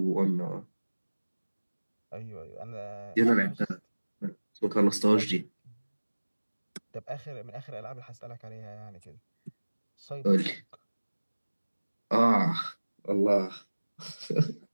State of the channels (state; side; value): inverted; both; correlation -1.00